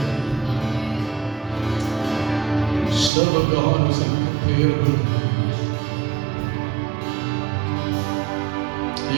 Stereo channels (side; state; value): left; drops out; at 3.1 s